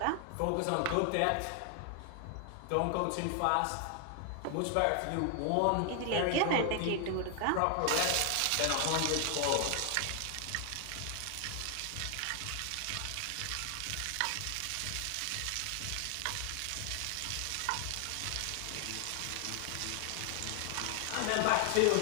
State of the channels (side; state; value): both; different; correlation 0.00